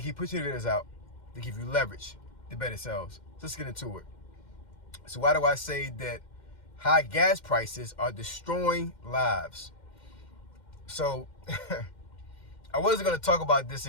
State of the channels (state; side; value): late; right; 2.1 ms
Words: keep pushing videos out, to give you leverage to better selves. So let's get into it. So why do I say that high gas prices are destroying lives? So I wasn't going to talk about this